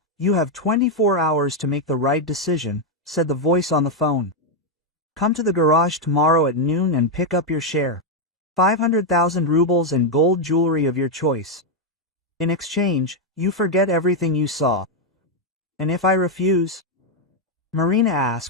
you have 24 hours to make the right decision," said the voice on the phone. "Come to the garage tomorrow at noon and pick up your share. 500,000 rubles and gold jewelry of your choice. In exchange, you forget everything you saw." "And if I refuse?" Marina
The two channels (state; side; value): normal; both; correlation 0.01